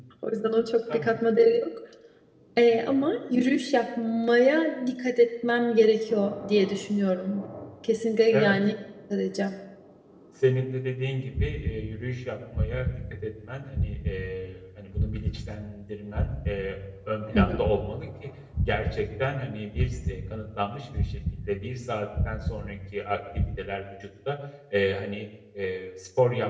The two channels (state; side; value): identical; both; correlation 1.00